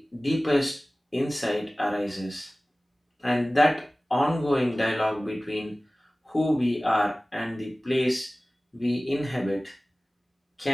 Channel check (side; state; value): both; normal; correlation 0.98